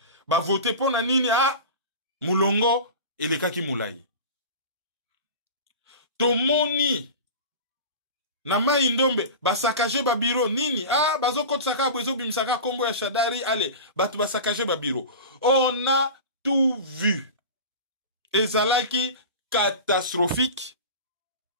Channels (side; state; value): both; inverted; correlation -0.31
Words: ba voté pour na nini a mulongo elekaki mulai. Tomoni na Mai-Ndombe, ba sakaje ba bureau, nini? Ah, bazo kote saka, bezo bimsaka, kombo ya Shadari, allez, batu ba sakaje ba bureau. On a tout vu. Ezalaki catastrophique.